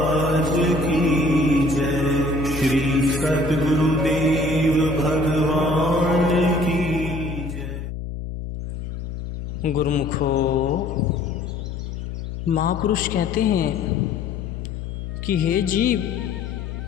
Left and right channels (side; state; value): left; noise; hum, 7 dB below the sound